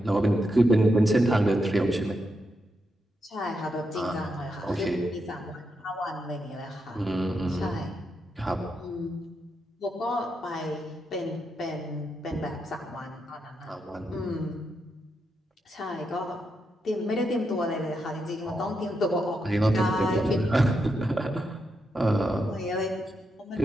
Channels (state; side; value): normal; both; correlation 0.83